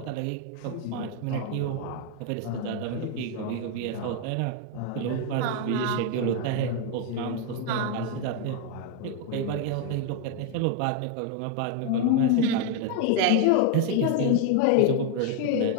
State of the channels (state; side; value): different; both; correlation 0.01